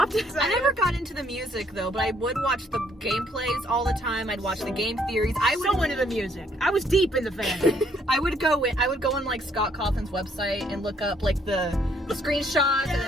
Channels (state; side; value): normal; both; correlation 0.67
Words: never got into the music though, but I would watch the gameplays all the time. I'd watch the game theories. I was so into the music. I was deep in the fandom. I would go on like Scott Cawthon's website and look up like the screenshots and then